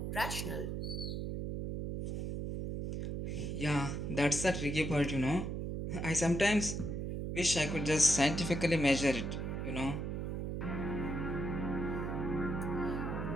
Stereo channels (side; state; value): right; noise; hum, 3 dB below the sound